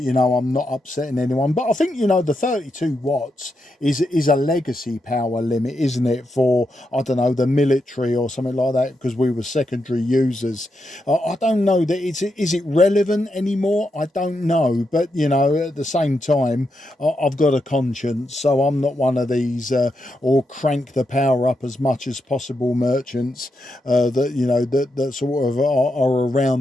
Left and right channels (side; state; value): both; normal; correlation 0.84